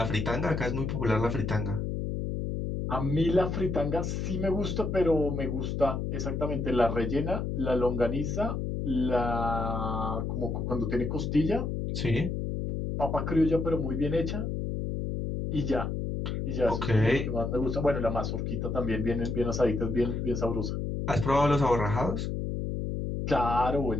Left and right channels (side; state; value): left; noise; hum, 2 dB below the sound